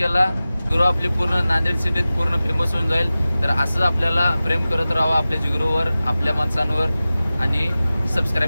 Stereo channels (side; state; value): both; inverted; correlation -0.96